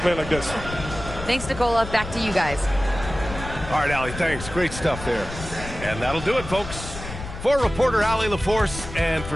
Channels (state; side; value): noise; left; rumble, 10 dB below the sound